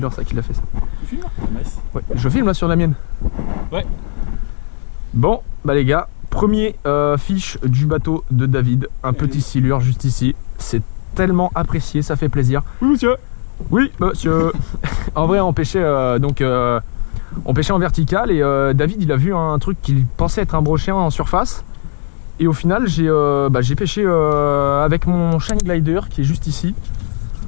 ça qui l'a fait ça. Tu filmes là? Nice. Ouais, je filme là sur la mienne. Ouais. Bon, bah les gars, premier fiche du bateau de David. Un petit silure juste ici. C'est tellement apprécié, ça fait plaisir. Oui monsieur. Oui monsieur. En vrai on pêchait on pêchait en vertical et David il a vu un truc qu'il pensait être un brochet en surface. Et au final j'ai pêché avec mon Shine Glider qui est juste ici.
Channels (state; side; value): silent; right; digital silence